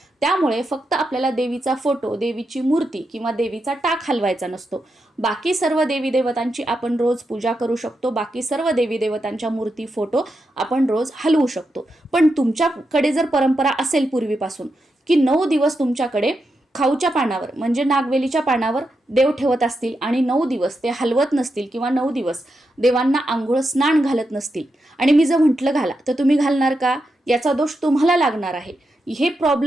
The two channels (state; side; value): normal; both; correlation 0.86